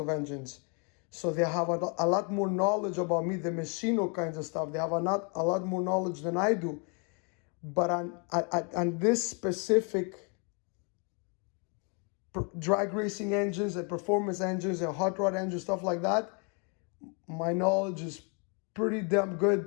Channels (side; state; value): right; quieter; 36.3 dB